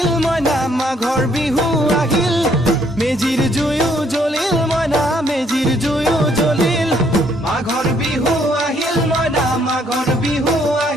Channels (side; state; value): both; normal; correlation 0.67